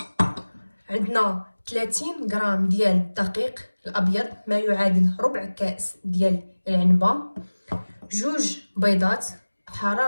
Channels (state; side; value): inverted; both; correlation -1.00